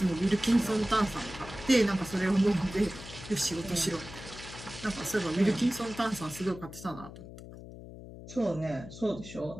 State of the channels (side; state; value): left; noise; hum, 14 dB below the sound